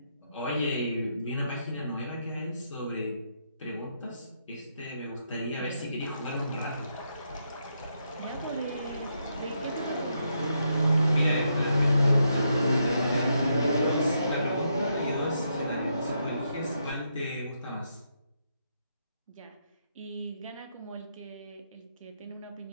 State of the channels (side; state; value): both; inverted; correlation -0.80